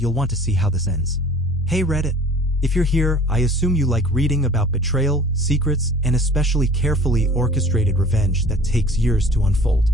want to see how this ends. Hey Reddit. If you're here, I assume you like reading about betrayal, secrets, and especially carefully orchestrated revenge that takes years to unfold.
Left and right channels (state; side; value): normal; both; correlation 0.48